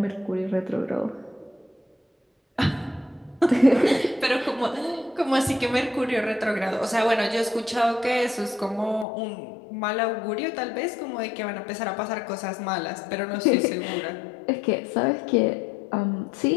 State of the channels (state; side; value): drops out; right; at 9.1 s